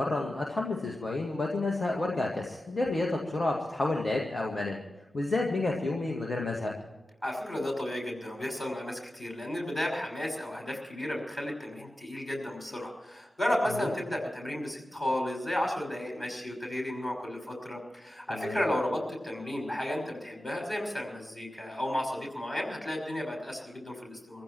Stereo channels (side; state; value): both; normal; correlation 0.93